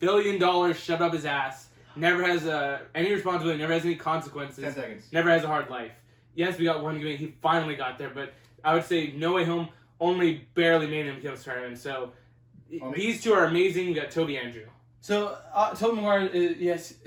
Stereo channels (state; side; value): identical; both; correlation 1.00